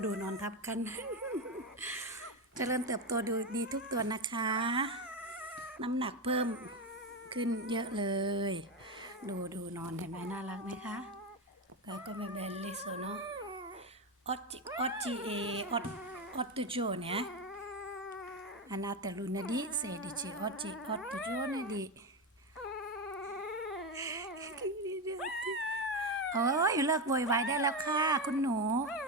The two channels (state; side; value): normal; both; correlation 0.14